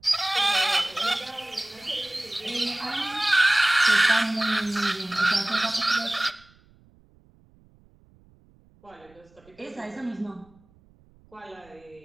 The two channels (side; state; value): right; noise; rumble, 30 dB below the sound